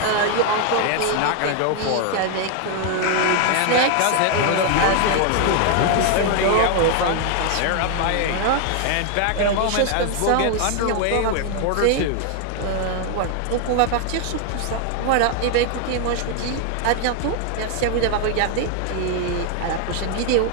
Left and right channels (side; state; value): both; different; correlation 0.00